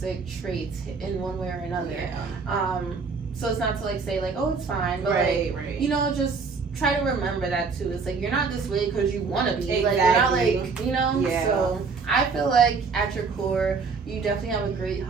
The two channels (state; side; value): quieter; left; 4.8 dB